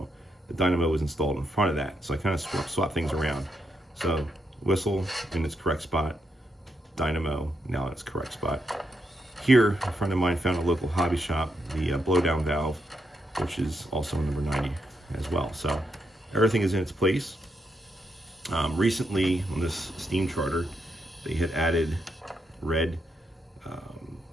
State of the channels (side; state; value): both; normal; correlation 0.80